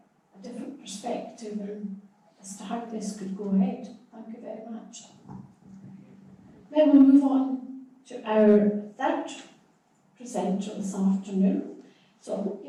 a different perspective as to how this could go ahead. Thank you very much. Then we'll move on to our third presenter this afternoon. So I hope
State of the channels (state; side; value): identical; both; correlation 1.00